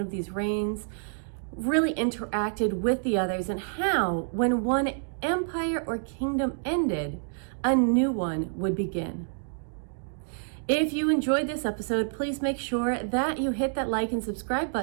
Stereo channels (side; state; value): left; silent; digital silence